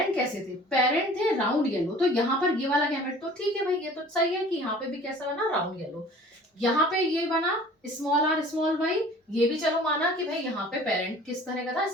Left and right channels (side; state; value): both; normal; correlation 0.47